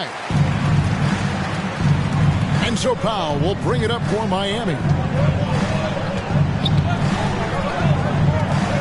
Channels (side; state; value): both; identical; correlation 1.00